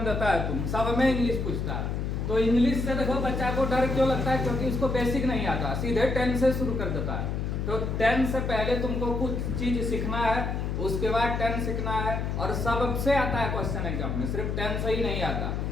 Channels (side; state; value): left; noise; hum, 2 dB below the sound